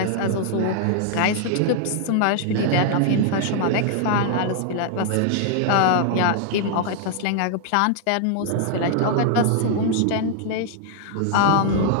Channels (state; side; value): different; both; correlation 0.00